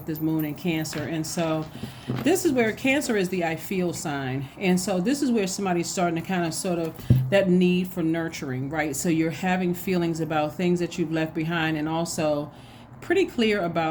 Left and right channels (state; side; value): identical; both; correlation 1.00